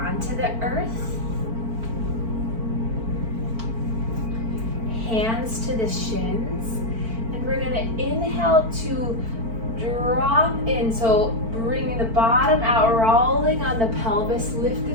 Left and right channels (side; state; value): left; late; 4.5 ms